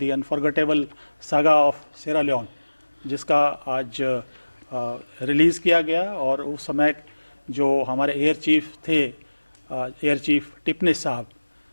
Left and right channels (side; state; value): both; inverted; correlation -1.00